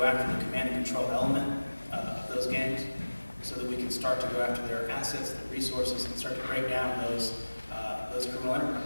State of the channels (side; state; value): both; inverted; correlation -1.00